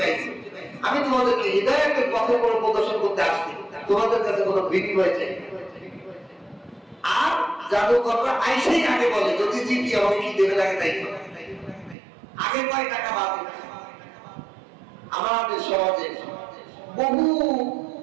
আইছি, আমি তোমাদেরকে হিদায়াতের পথে কোনো প্রদর্শন করতে আসছি, তোমাদের কাছে কোনো বিনিময় চাই না। আর জাদুকররা আইসেই আগে বলে, যদি জিতি আমাকে কি দেবে লাগে তাই আগে কয় টাকা বাজে। আমাদের সমাজে বহু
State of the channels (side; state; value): left; drops out; at 12.0 s